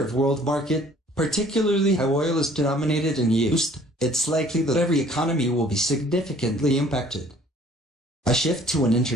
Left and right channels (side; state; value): both; normal; correlation 0.55